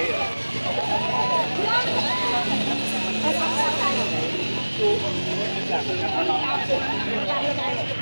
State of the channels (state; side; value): inverted; both; correlation -1.00